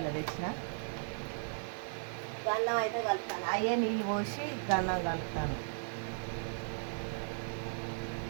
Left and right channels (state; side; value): silent; left; digital silence